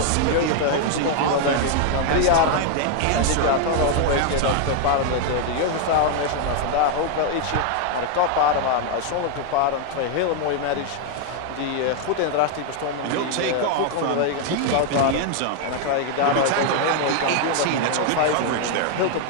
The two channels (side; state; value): both; different; correlation 0.00